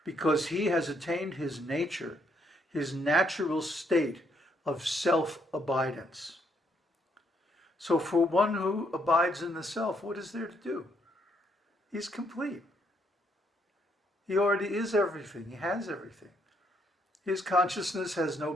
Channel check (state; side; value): normal; both; correlation 0.72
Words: because he has attained his nature, his natural state of self-abidance. So for one who abides in the self, what is there to do? He's complete. He already is everything. He has everything. His consciousness has no